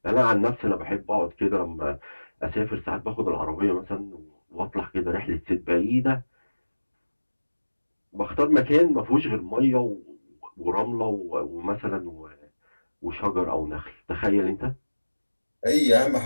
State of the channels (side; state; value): both; inverted; correlation -1.00